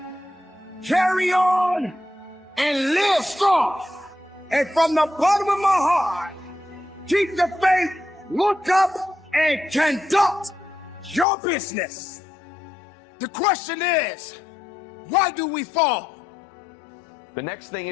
carry on, and live strong. And from the bottom of my heart, keep the faith, look up, and conduct your business. The question is, why do we fall? The next thing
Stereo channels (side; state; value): right; drops out; at 11.2 s